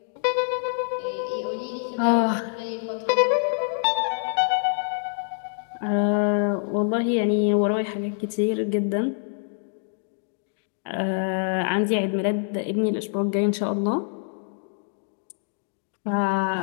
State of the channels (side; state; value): right; silent; digital silence